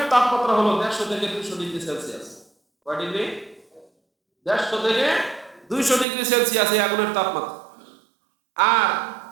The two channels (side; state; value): left; drops out; at 6.1 s